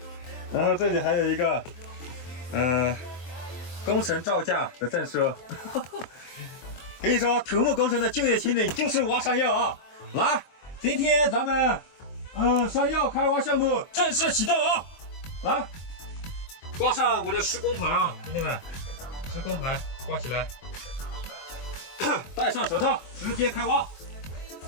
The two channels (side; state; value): right; late; 23 ms